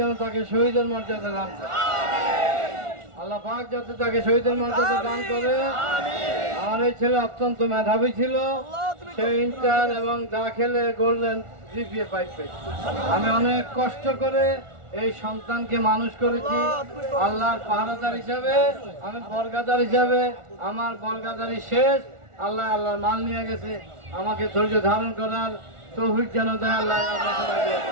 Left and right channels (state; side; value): late; left; 1.4 ms